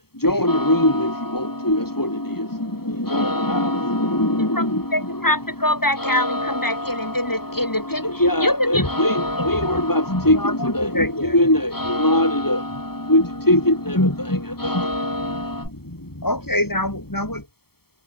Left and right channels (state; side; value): late; right; 0.95 ms